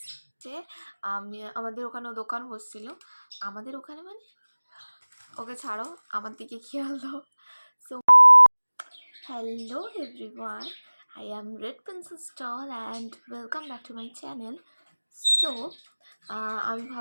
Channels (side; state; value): both; inverted; correlation -1.00